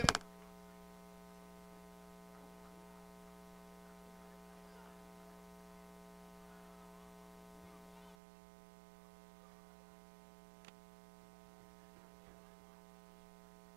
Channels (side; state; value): left; drops out; at 8.2 s